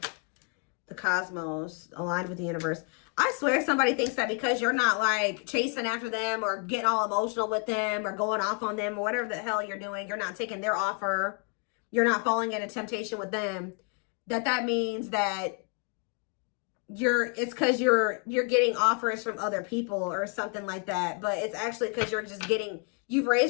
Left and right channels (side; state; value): right; quieter; 36.0 dB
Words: The cosmos, aligned with the universe. I swear somebody thinks that because you're not like chasing after them or getting all emotional with them or going off on them or whatever the hell you're doing, you're not taking their offer, you're not falling into temptation with them, that means that it's because you're getting offers from other people or something like that. But it's actually because you're just you've